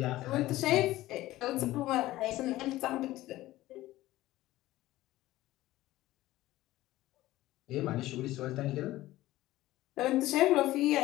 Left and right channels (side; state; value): right; quieter; 16.4 dB